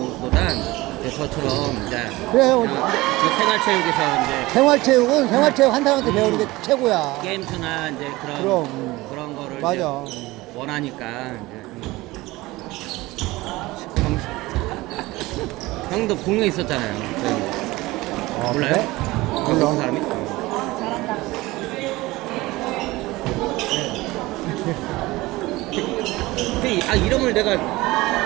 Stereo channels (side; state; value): left; quieter; 20.0 dB